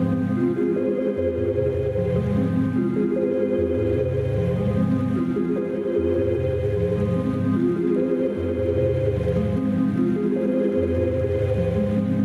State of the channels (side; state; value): both; identical; correlation 1.00